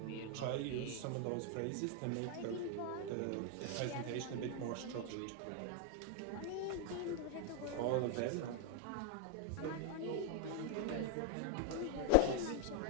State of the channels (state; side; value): different; both; correlation 0.00